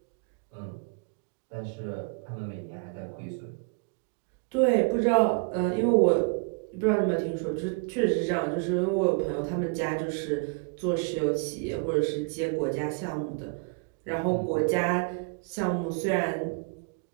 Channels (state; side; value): quieter; left; 34.7 dB